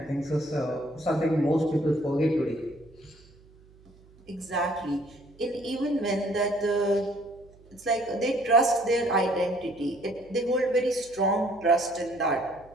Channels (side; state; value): right; noise; hum, 26 dB below the sound